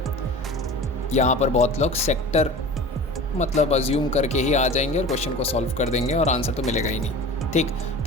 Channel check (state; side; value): normal; both; correlation 0.37